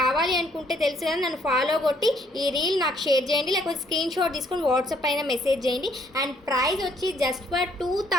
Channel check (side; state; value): both; normal; correlation 0.66